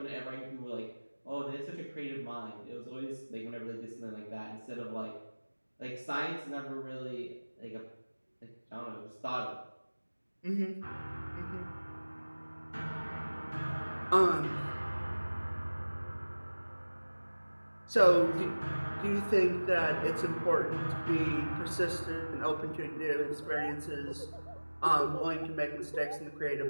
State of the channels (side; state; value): both; inverted; correlation -1.00